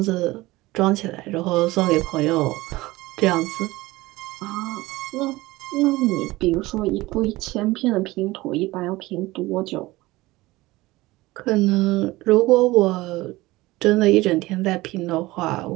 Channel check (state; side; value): quieter; left; 19.5 dB